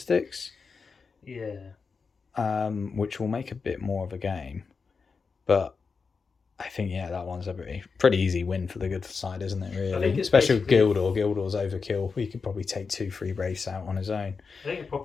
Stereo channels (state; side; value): quieter; right; 5.0 dB